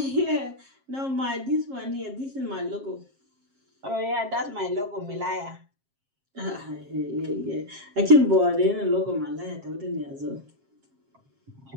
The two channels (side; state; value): left; late; 7.5 ms